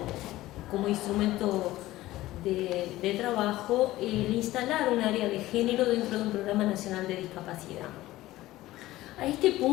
como instrumento de trabajo el instalar un área de género dentro de un programa nacional de discapacidad. A este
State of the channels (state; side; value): quieter; right; 16.6 dB